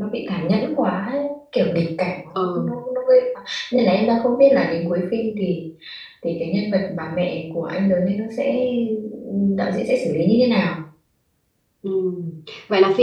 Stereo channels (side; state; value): both; identical; correlation 1.00